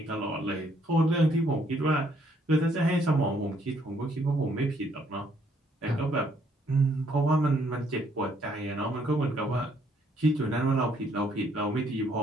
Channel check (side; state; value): both; normal; correlation 0.68